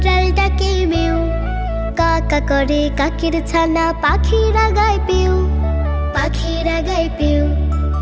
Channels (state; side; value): identical; both; correlation 1.00